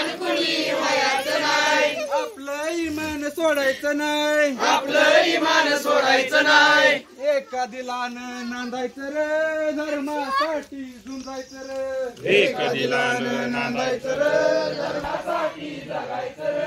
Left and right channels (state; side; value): identical; both; correlation 1.00